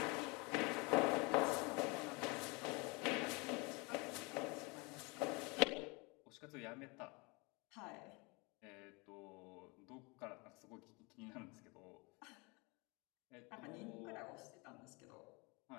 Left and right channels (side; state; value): right; quieter; 27.9 dB